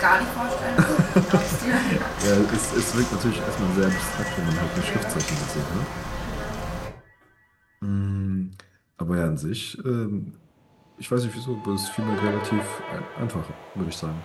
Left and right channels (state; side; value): identical; both; correlation 1.00